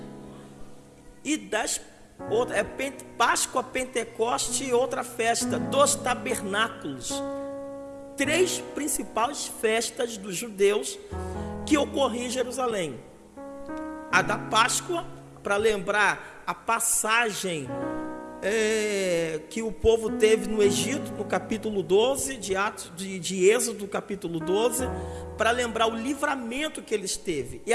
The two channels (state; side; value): identical; both; correlation 1.00